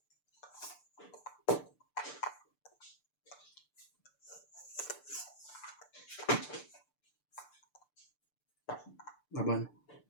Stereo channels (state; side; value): late; right; 6.8 ms